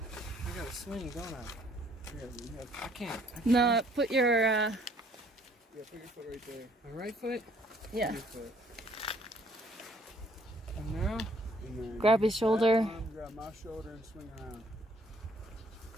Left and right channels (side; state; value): both; normal; correlation 0.63